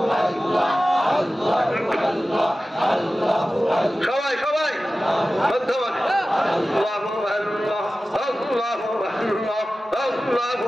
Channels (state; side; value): normal; both; correlation 0.95